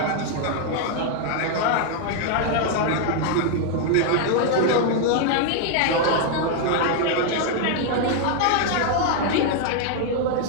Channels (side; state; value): both; different; correlation 0.00